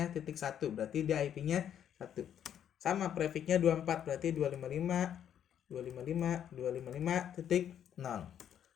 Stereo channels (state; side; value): quieter; right; 9.6 dB